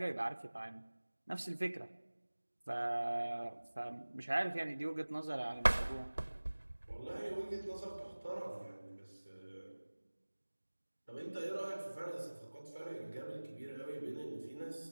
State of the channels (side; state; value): both; inverted; correlation -1.00